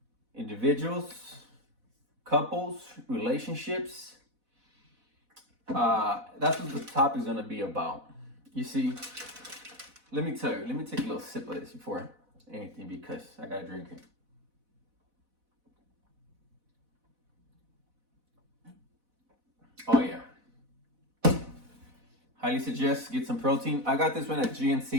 individuals, couples, relationships. That's what the topic is gonna be about. You see, let me tell you, let me take a little sip of this before anything because I gotta drink it. Oh yeah. Highly suggest get some protein. I got this one at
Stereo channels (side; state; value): left; late; 4.1 ms